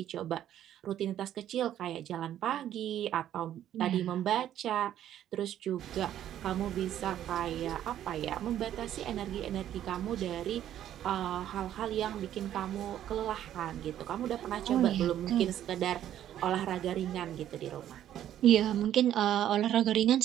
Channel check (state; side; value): quieter; left; 11.4 dB